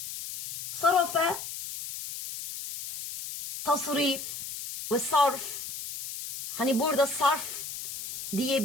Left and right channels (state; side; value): noise; left; hiss, 8 dB below the sound